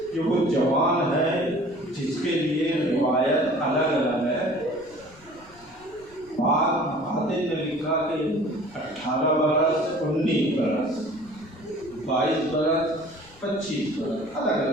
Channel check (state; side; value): noise; left; rumble, 25 dB below the sound